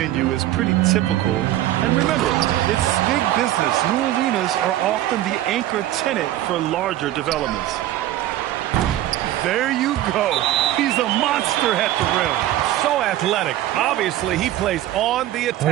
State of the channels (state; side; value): quieter; left; 13.9 dB